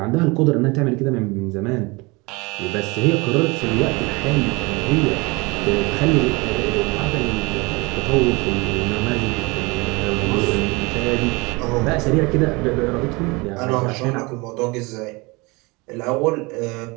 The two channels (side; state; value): left; quieter; 25.7 dB